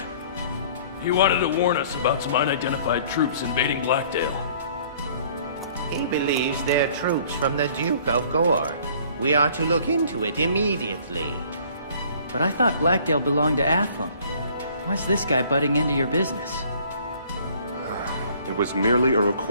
He wanted to warn us about some unidentified troops invading Blackdale. He believes they're troops from the Duke of Gore. We are to look into it immediately. But I thought Blackdale belonged to Athlum. Why's this guy butting into your business? It was merely a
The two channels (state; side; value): inverted; both; correlation -0.55